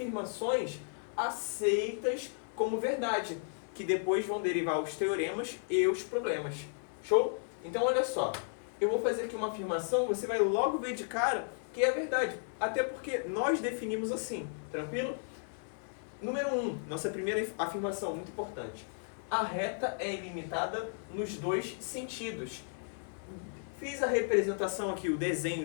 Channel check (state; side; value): silent; right; 55 dB below the other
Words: aceitas como verdade, que depois vão derivar os teoremas e os problemas. Show? Então olha só, eu vou fazer aqui uma afirmação, você vai logo ver de cara que é verdade, até porque nós definimos assim, tranquilo? Número 1, nossa primeira afirmação, muito importante. A reta é ilimitada nos dois sentidos. Fiz a representação aqui, o desenho